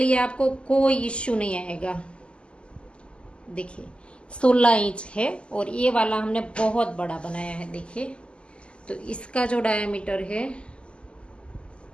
आपको कोई इश्यू नहीं आएगा। देखिए 16 इंच है और ये वाला हमने बहुत बड़ा बनाया है। देखिए तो इसका जो डायमीटर है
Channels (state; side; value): late; right; 0.052 ms